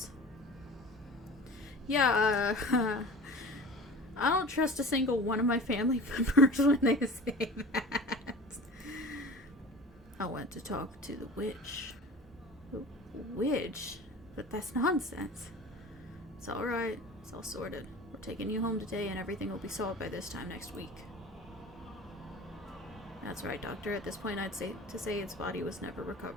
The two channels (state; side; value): normal; both; correlation 0.39